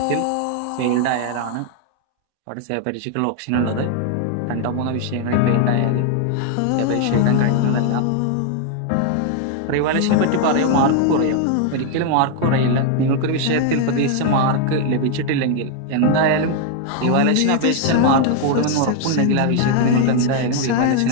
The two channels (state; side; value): different; both; correlation 0.00